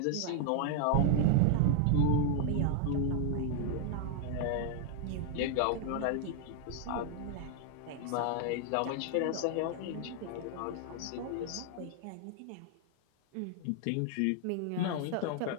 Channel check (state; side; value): different; both; correlation 0.00